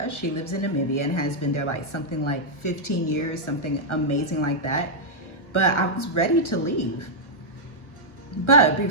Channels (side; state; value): right; late; 1.4 ms